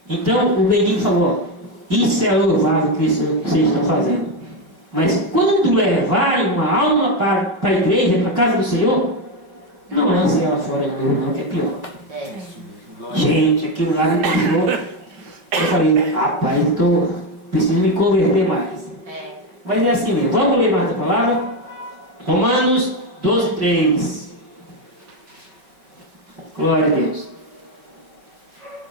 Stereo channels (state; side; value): late; left; 5.3 ms